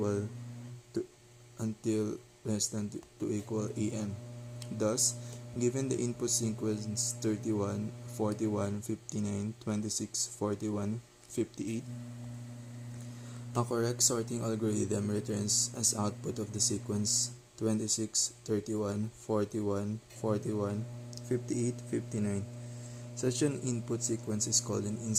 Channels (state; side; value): identical; both; correlation 1.00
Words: to until less than to equal AN. Thus, given the input sequence 31, 41, 59, 26, 41, 58, a correct sorting algorithm returns as output of the sequence 26, 31, 41, 41, 58, 59. Such an input sequence is called an